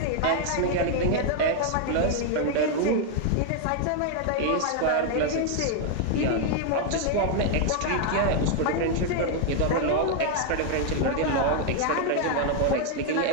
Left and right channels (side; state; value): both; different; correlation 0.00